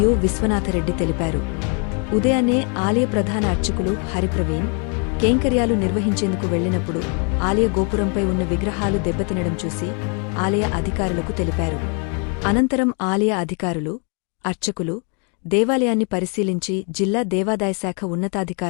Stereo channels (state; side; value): quieter; right; 38.4 dB